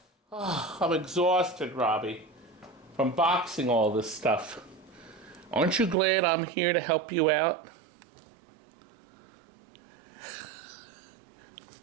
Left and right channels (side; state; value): left; drops out; at 6.0 s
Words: Oh, I'm exhausted, Robbie, from boxing all this stuff. Aren't you glad I'm here to help you out?